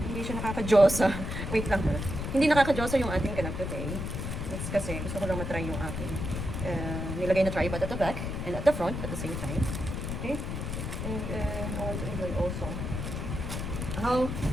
Hindi siya nakaka-josa. Wait lang ha. Hindi nakaka-josa yung ating ganap today. That's kasi gusto ko lang matry yung aking nilagay na tripod at the back and at the front at the same time. Okay? And I want to enjoy also.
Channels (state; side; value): noise; left; rumble, 4 dB below the sound